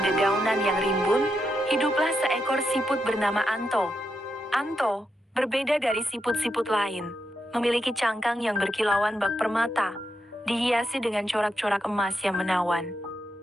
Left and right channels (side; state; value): both; normal; correlation 0.84